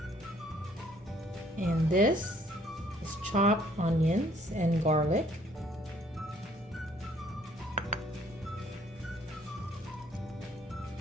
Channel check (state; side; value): normal; both; correlation 0.62